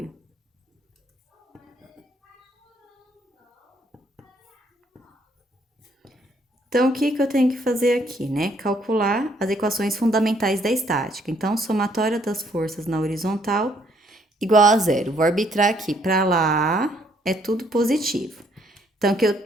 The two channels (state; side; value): normal; both; correlation 0.67